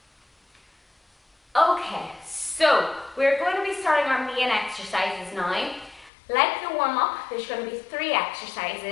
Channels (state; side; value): drops out; right; at 6.1 s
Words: Okay, so we're going to be starting our main exercises now. Like the warm-up, there's going to be 3